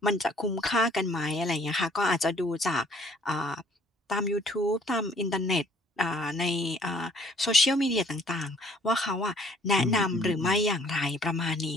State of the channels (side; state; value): both; normal; correlation 0.59